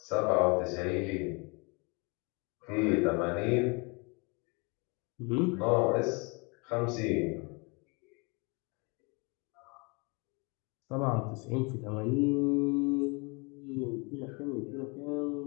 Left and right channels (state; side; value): quieter; right; 30.6 dB